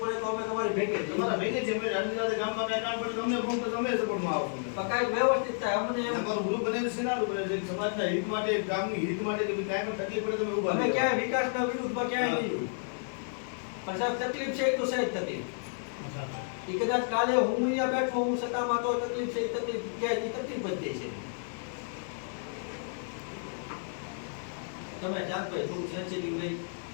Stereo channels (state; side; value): silent; right; digital silence